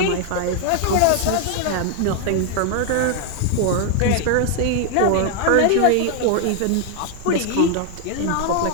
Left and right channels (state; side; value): different; both; correlation 0.00